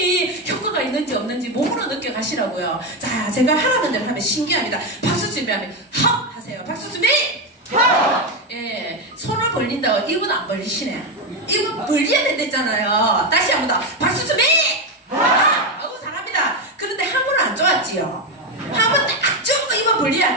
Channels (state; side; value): normal; both; correlation 0.10